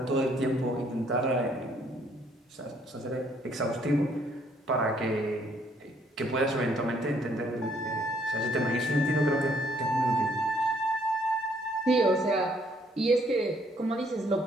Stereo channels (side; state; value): both; normal; correlation 0.66